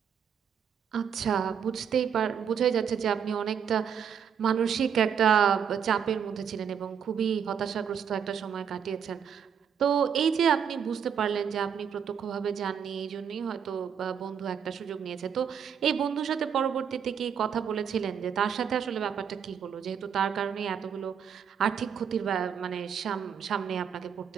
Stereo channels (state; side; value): quieter; left; 7.7 dB